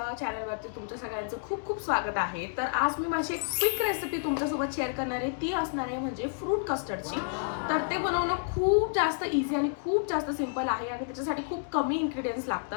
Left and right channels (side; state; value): right; silent; digital silence